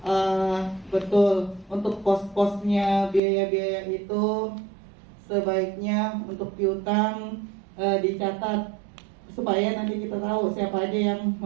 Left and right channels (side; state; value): left; drops out; at 3.2 s